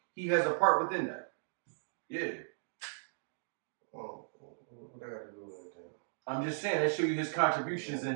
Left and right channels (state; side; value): silent; left; digital silence